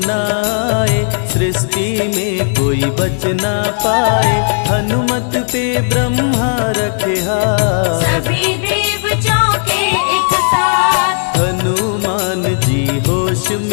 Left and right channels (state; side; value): silent; right; 65 dB below the other